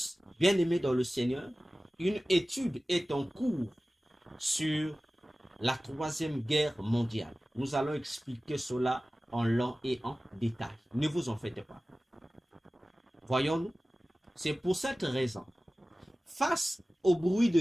bien-aimés dans le Seigneur, une étude est en cours sur la troisième guerre mondiale. Nous allons expliquer cela en long et en détail. Ne vous en faites pas. Voyons-nous, c'est pour cette raison, face au bruit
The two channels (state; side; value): normal; both; correlation 0.97